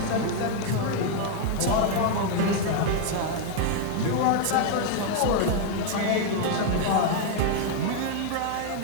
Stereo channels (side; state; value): both; different; correlation 0.00